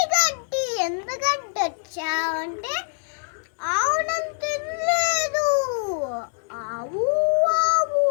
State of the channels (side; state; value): right; silent; digital silence